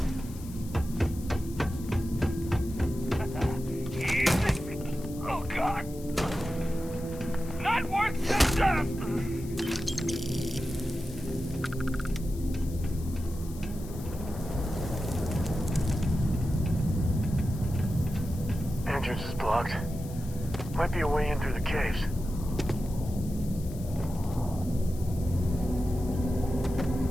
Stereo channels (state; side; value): noise; left; hiss, 19 dB below the sound